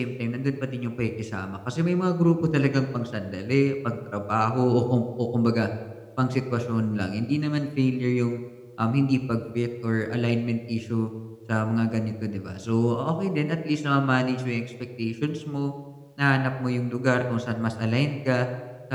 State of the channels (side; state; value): both; identical; correlation 1.00